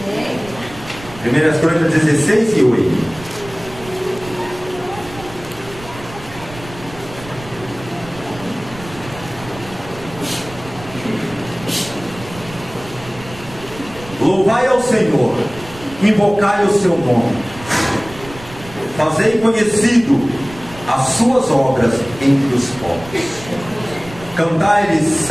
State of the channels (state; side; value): noise; right; rumble, 17 dB below the sound